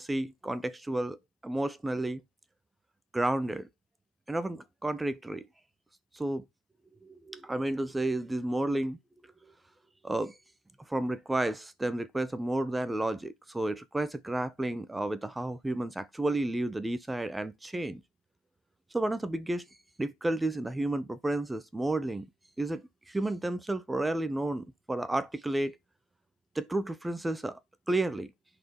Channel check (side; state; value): both; normal; correlation 0.94